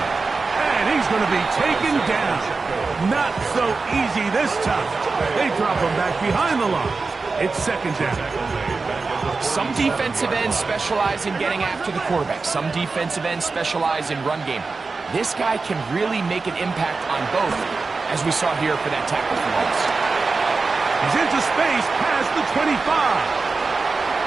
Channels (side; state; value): left; quieter; 4.1 dB